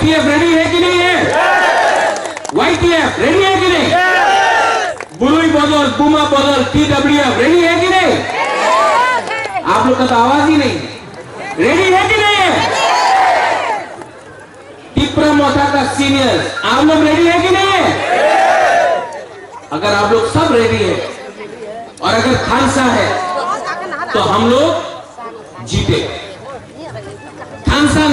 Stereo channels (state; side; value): identical; both; correlation 1.00